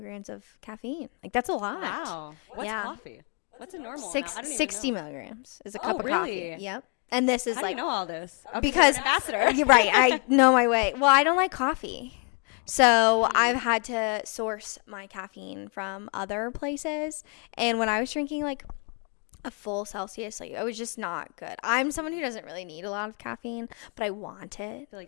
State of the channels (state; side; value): quieter; right; 37.8 dB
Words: of caffeine. Like that's a lot. Wow. What's coffee? What's a normal? 60 milligrams is a cup of really? coffee. Yep. And this is I like know all this because you're right. I know my way. Well, I don't like coffee, so I've had to source my caffeine from other places. And when I was drinking like a full Celsius, like it was just not good. I'm someone who doesn't really need a lot of caffeine, but I want it. I feel